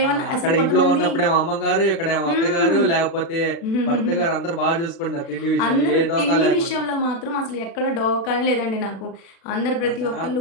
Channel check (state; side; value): late; right; 36 ms